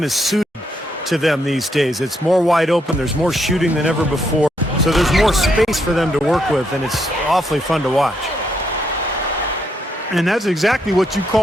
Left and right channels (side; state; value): both; normal; correlation 0.77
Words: is suited to them these days. It's more wide open. There's more shooting than ever before. So there's more space for them to work with, and it's awfully fun to watch. And that's exactly what you